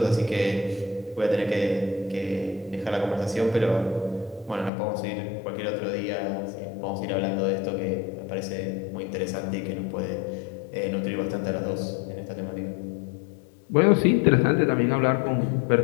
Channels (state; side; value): drops out; right; at 4.7 s